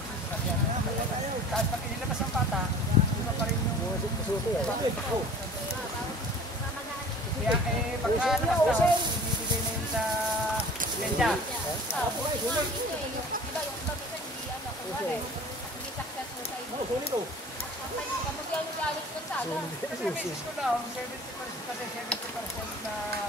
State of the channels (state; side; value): normal; both; correlation 0.44